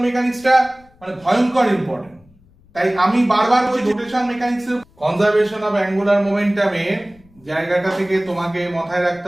মেকানিক্সটা মানে ভয়ঙ্কর ইম্পর্টেন্ট। তাই আমি বারবার বলছি রোটেশন মেকানিক্সের কনজারভেশন অফ অ্যাঙ্গুলার মোমেন্টামের জায়গাটা থেকে তোমাকে মাথায় রাখতে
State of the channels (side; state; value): left; noise; rumble, 29 dB below the sound